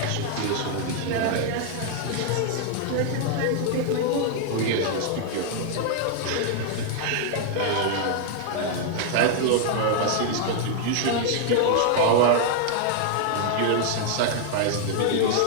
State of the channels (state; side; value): different; both; correlation 0.00